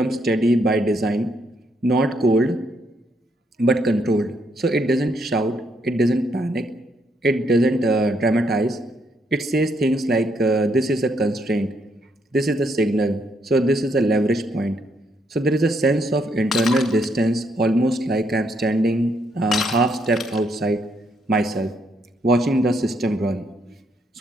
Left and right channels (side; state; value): both; normal; correlation 0.74